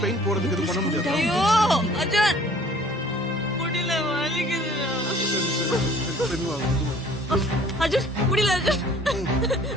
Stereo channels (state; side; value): normal; both; correlation 0.53